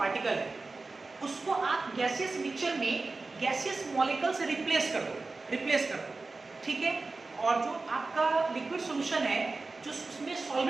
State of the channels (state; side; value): quieter; left; 3.6 dB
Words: है, उसको आप गैसियस मिक्सचर में गैसियस मॉलिक्यूल से रिप्लेस कर दो, ठीक है। और जो आपका लिक्विड सोल्यूशन है, जो उसमें